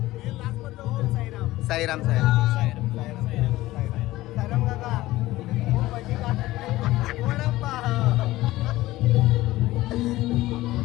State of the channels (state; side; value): quieter; right; 17.2 dB